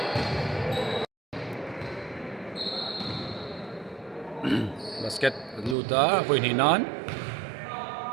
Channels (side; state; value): left; drops out; at 5.8 s